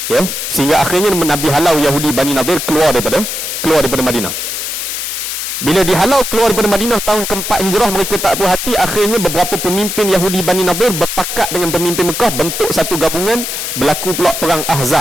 ya. Sehingga akhirnya Nabi halau Yahudi Bani Nadir keluar daripada Madinah. Bila dihalau keluar daripada Madinah tahun ke-4 Hijrah, mereka tak puas hati. Akhirnya beberapa pemimpin Yahudi Bani Nadir berpakat dengan pemimpin Mekah, bentuk satu gabungan. Berlaku pula perang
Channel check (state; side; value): noise; left; hiss, 4 dB below the sound